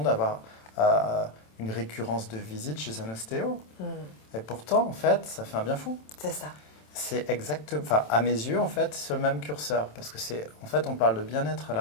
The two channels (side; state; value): right; late; 27 ms